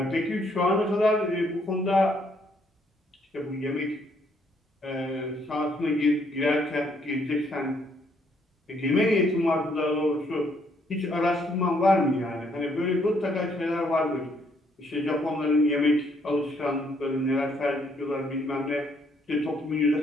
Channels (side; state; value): both; normal; correlation 0.69